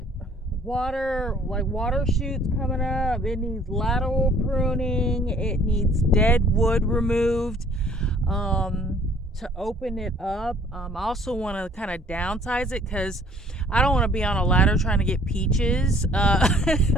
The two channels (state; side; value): normal; both; correlation 0.57